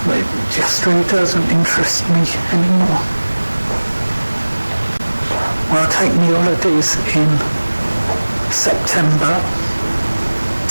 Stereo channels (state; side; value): inverted; both; correlation -1.00